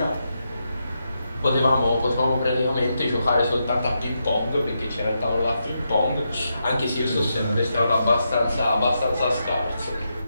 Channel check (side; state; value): both; inverted; correlation -0.84